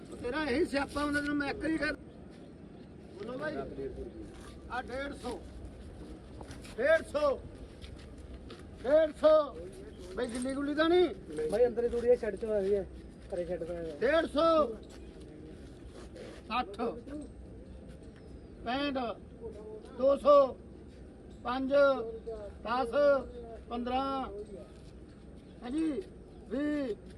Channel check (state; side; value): identical; both; correlation 1.00